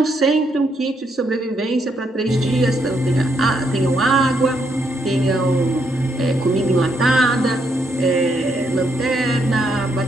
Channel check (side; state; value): both; normal; correlation 0.76